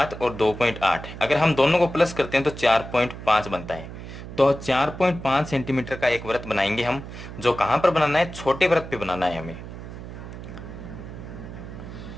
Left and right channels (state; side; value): noise; right; hum, 11 dB below the sound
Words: और 2.8, अगर हम दोनों को प्लस करते हैं तो 4.5 बनता है। तो 4.5 सेंटीमीटर का एक वृत्त बनाएंगे हम, जो कहां पर बनाना है, छोटे वृत्त पे बनाना है हमें।